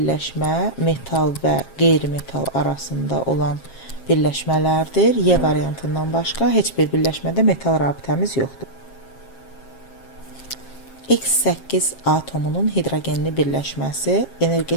metal və qeyri-metal arasında olan birləşmələrdir. Y variantından başqa heç bir birləşmədə metal rabitəmiz yoxdur. X8 atomunun hidrogenli birləşməsi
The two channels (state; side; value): late; right; 7.4 ms